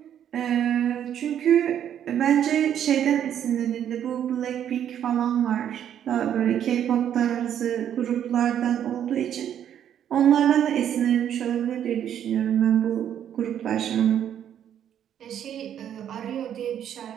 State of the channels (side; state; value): left; quieter; 9.8 dB